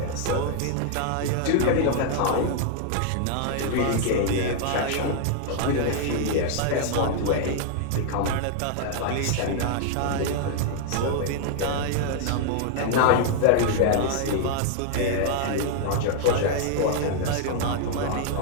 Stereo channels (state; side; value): different; both; correlation 0.00